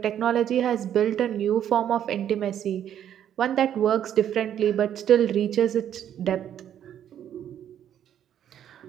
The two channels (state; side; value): quieter; left; 10.1 dB